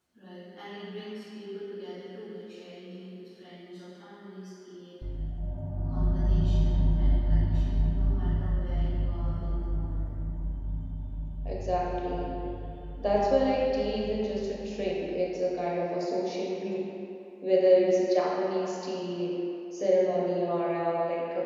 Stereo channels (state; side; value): identical; both; correlation 1.00